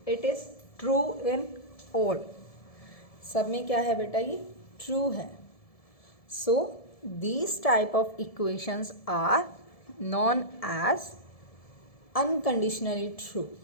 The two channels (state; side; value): late; right; 1.7 ms